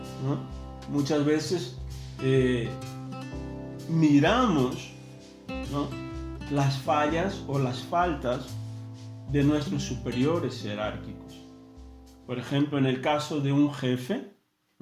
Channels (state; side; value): identical; both; correlation 1.00